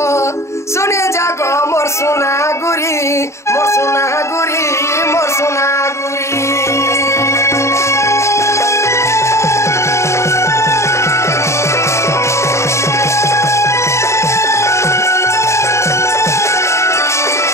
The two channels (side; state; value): right; late; 0.14 ms